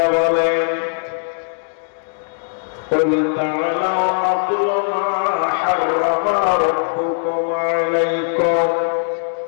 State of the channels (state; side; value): silent; right; digital silence